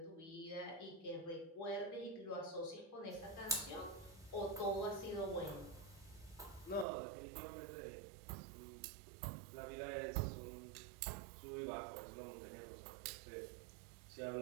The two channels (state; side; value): drops out; left; at 6.9 s